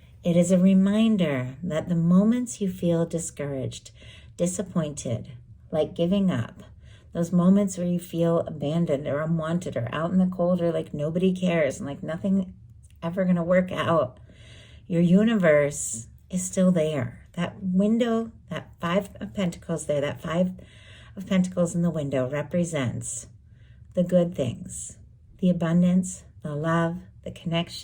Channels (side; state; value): both; identical; correlation 1.00